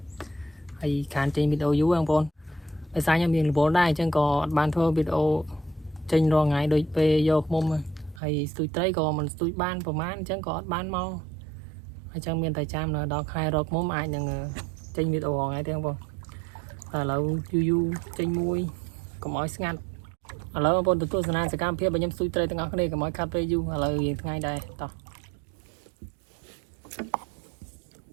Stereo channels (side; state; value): left; drops out; at 8.2 s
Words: Hay khán trên video dữ không phong. Bây giờ nhóm mình vốn đây chẳng có ban thơ video trên rồi ngày đôi về vô mông hay tôi train có mình tôi ban của mán chẳng có ban mau. Hay chẳng miền Tây Trang là đọc hai rốt mông ai nhưng trên video ngày thế không phong. Du trên môi có mỗi ngăn. Ông phong tụi tôi sẽ cam phía bên nhóm tôi train từng này có mỗi cà phê du ngay đây to.